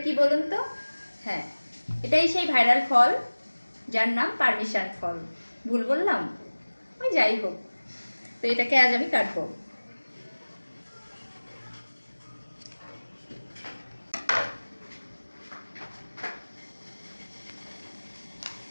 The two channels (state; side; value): inverted; both; correlation -1.00